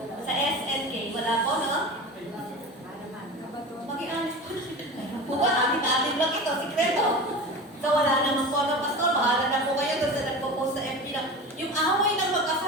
Sa SNK, wala po, no? Maging honest po. Buka, amin-amin lang ito, sikreto. So wala naman po, no, Pastor? Bahala na po kayo doon sa nagpo-post sa FB lang. Yung away ng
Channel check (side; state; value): both; normal; correlation 0.31